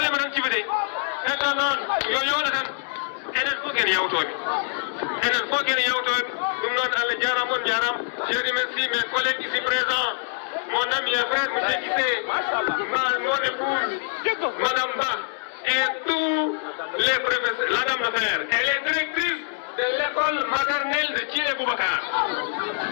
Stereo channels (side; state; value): right; silent; digital silence